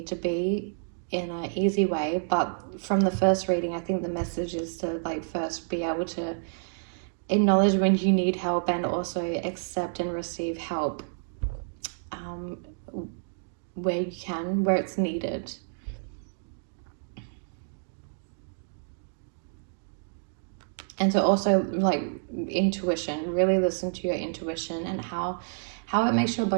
to be in an easy way. But from the first reading, I think the message is to like first be able to acknowledge when you need help and also accept and receive help where you can, where it's needed. And to also like intuition, really listen to your intuition and how it makes your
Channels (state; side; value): silent; left; digital silence